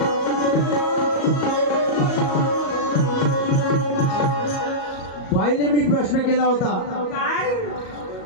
बाईने मी प्रश्न केला होता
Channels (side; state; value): right; late; 38 ms